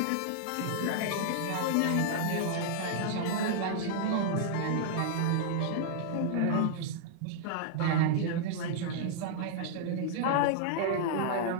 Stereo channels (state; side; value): different; both; correlation -0.01